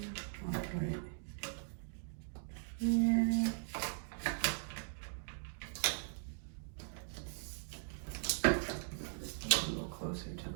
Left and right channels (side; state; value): left; silent; digital silence